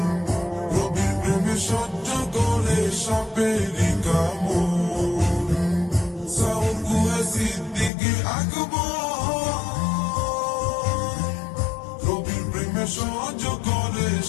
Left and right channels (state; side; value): drops out; right; at 7.9 s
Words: নবীর প্রেমে সহ্য করে সাপেরি কামড়। সাউর গুহে সিদ্দিকে আকবর, নবীর প্রেমে সহ্য করে